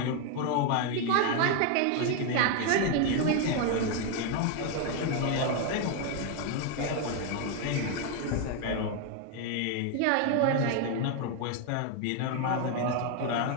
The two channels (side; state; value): both; different; correlation 0.01